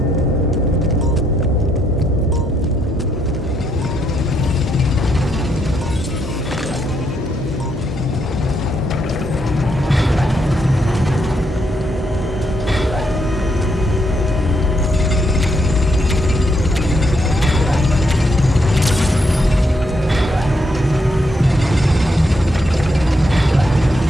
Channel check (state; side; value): normal; both; correlation 0.77